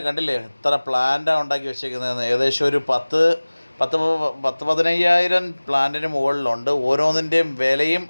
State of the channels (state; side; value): inverted; both; correlation -1.00